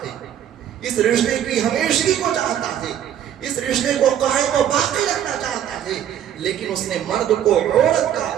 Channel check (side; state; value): left; quieter; 10.2 dB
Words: اس رشتے کی ہمیشگی کو چاہتا ہے، اس رشتے کو قائم و باقی رکھنا چاہتا ہے، لیکن اس نے مرد کو عورت کا